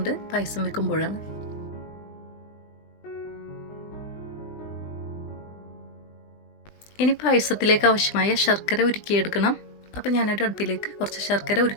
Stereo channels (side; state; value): right; late; 20 ms